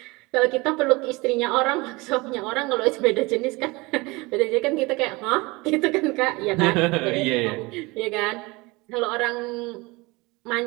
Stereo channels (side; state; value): left; quieter; 24.2 dB